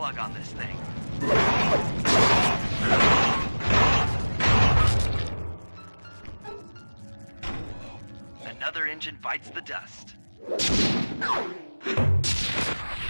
on this thing. Another engine bites the dust.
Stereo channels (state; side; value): inverted; both; correlation -1.00